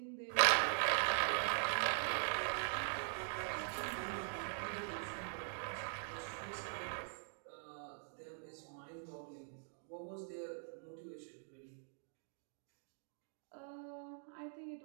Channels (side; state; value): left; silent; digital silence